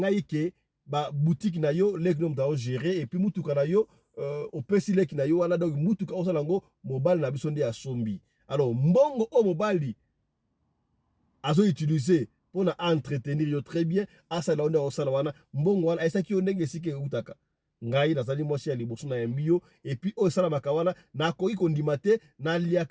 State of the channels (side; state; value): both; identical; correlation 1.00